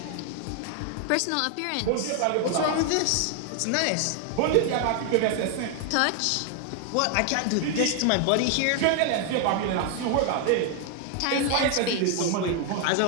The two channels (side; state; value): both; different; correlation 0.00